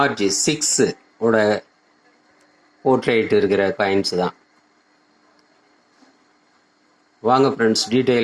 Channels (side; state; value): both; identical; correlation 1.00